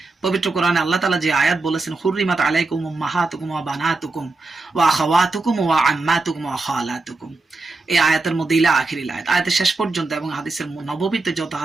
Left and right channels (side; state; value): left; quieter; 3.5 dB